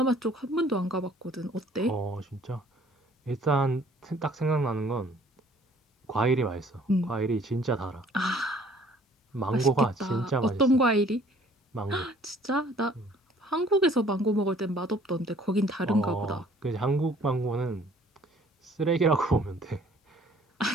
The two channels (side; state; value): both; normal; correlation 0.56